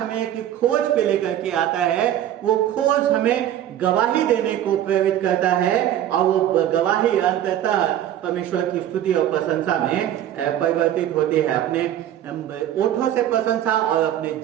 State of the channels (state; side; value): quieter; left; 11.5 dB